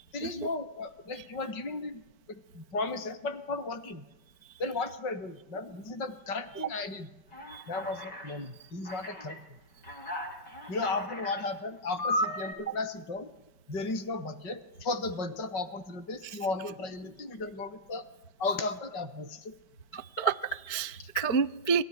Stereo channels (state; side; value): late; right; 5.1 ms